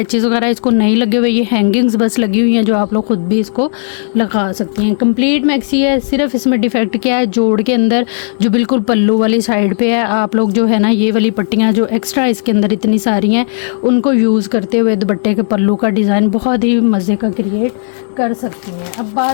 वगैरह इसको नहीं लगे हुए, ये हैंगिंग्स बस लगी हुई हैं जो आप लोग खुद भी इसको लगा सकते हैं। कंप्लीट मैक्सी है। सिर्फ इसमें डिफेक्ट क्या है, जोड़ के अंदर जो बिल्कुल पल्लू वाली साइड पे है, आप लोग जो है ना ये वाली पट्टियाँ जो एक्स्ट्रा इसके अंदर इतनी सारी हैं उनको यूज़ करते हुए दुपट्टे के पल्लू का डिज़ाइन बहुत ही मज़े का क्रिएट कर सकती हैं। अब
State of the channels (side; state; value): right; silent; digital silence